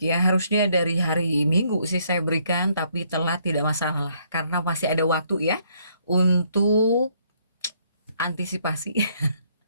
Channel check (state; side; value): inverted; both; correlation -0.69